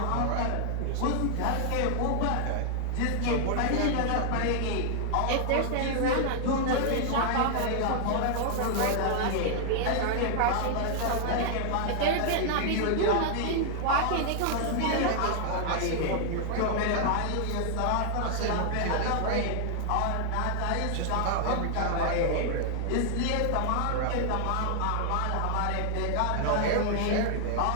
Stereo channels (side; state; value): both; different; correlation 0.00